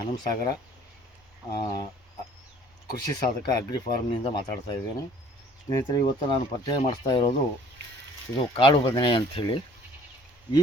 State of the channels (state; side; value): normal; both; correlation 0.55